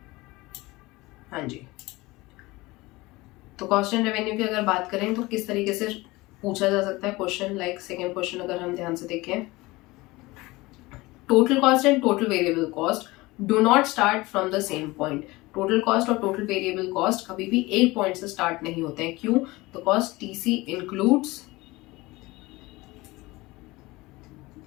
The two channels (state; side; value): quieter; right; 21.2 dB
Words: हाँ जी. तो कॉस्ट एंड रेवेन्यू की अगर बात करें तो किस तरीके से पूछा जा सकता है क्वेश्चन, लाइक सेकेंड क्वेश्चन अगर हम ध्यान से देखें, total cost and total variable cost do not start from the same point. Total cost और टोटल वेरिएबल कॉस्ट कभी भी एक पॉइंट से स्टार्ट नहीं होते हैं. क्यों, तो cost TC includes